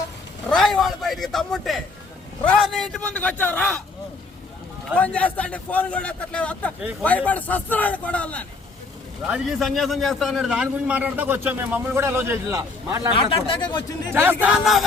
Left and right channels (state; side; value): quieter; right; 3.8 dB